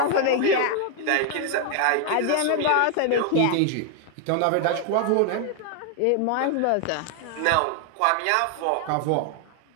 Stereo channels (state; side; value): different; both; correlation 0.00